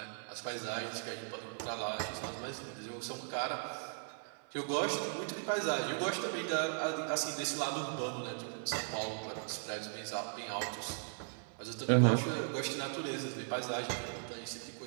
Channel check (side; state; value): left; silent; 52 dB below the other